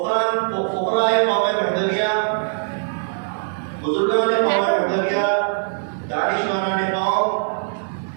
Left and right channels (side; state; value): left; silent; digital silence